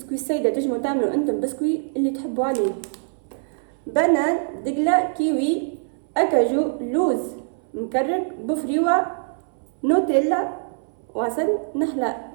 سيدة، تجموا تعملوا انتم بسكوي اللي تحبوا عليه. بنان، دقلة، كيوي، أكاجو، لوز مكرك، بفريوة، نوتيلا، وعسل نحلة.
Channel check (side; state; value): left; silent; 60 dB below the other